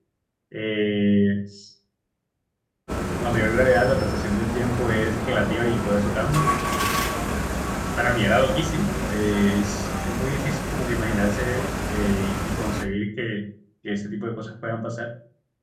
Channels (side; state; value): both; identical; correlation 1.00